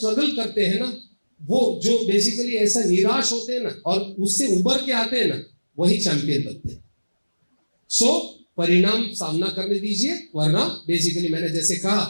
करते हैं ना, वो जो बेसिकली ऐसा निराश होते हैं ना और उससे उबर के आते हैं ना, वही चैंपियन बनते हैं। सो परिणाम सामना करने दीजिए, वरना बेसिकली मैंने जैसे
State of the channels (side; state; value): both; inverted; correlation -1.00